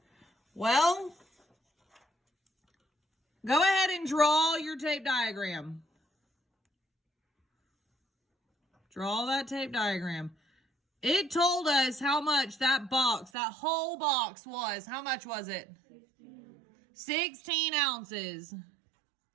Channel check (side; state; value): left; drops out; at 13.3 s